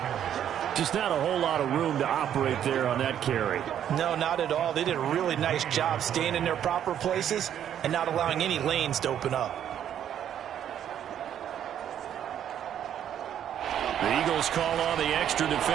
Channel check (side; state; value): left; quieter; 9.9 dB